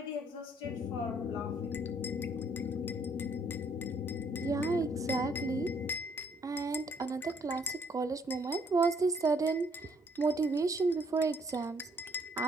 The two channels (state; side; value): normal; both; correlation 0.66